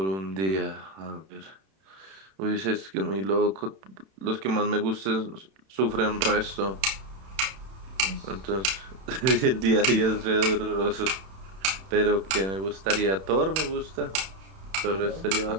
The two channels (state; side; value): late; left; 31 ms